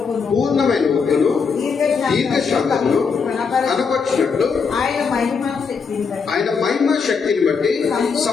దీర్ఘశాంతమును కనపరిచినట్లు ఆయన మహిమ శక్తిని బట్టి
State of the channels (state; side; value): quieter; right; 5.5 dB